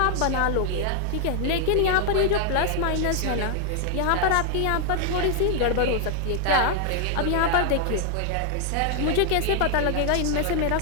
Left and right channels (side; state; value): both; different; correlation 0.00